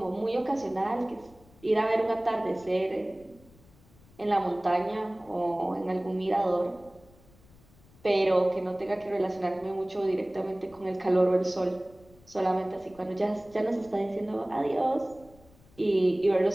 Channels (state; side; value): noise; left; rumble, 27 dB below the sound